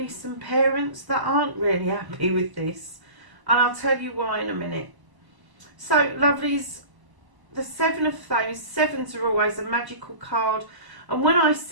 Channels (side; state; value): left; late; 1.0 ms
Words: some parents that aren't really happy with this. And I'll tell you why in a minute. So, lovelies, the Seven of Thrones, sevens are always a magical card. And when I